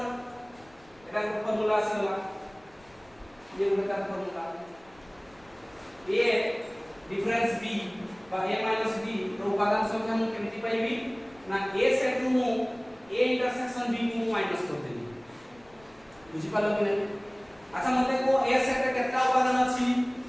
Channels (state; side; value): noise; left; rumble, 28 dB below the sound